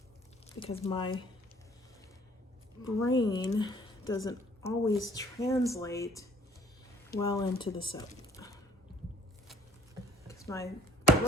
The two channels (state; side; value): normal; both; correlation 0.57